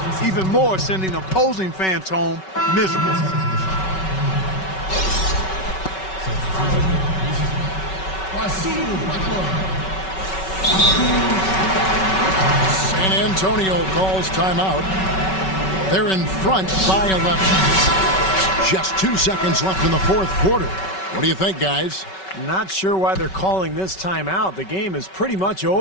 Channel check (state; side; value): late; right; 5.3 ms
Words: even more sending opposing fans home miserable. San Antonio calls timeout. They're in front by 11. Just 2 seconds left in the fourth quarter. What do you think, guys? Not sure why they're calling this timeout. The game is pretty much